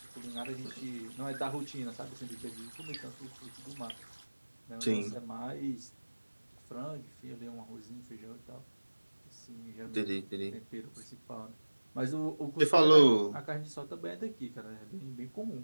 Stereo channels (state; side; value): inverted; both; correlation -1.00